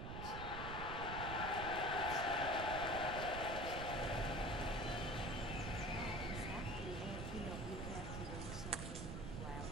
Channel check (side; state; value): right; noise; rumble, 5 dB below the sound